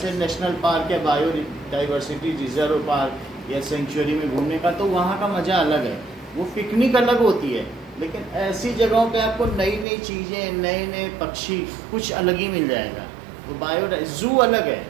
नेशनल पार्क या बायोडाइवर्सिटी रिजर्व पार्क या सेंचुरी में घूमने का, तो वहाँ का मज़ा अलग है। वो पिकनिक अलग होती है, लेकिन ऐसी जगहों पे आपको नई नई चीज़ें, नए नए पक्षी, कुछ अलग ही मिल जाएगा। तो जू अलग है।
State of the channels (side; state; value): left; drops out; at 9.9 s